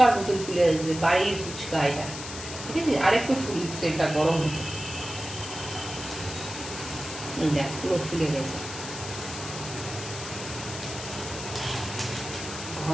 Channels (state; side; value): noise; left; hiss, 9 dB below the sound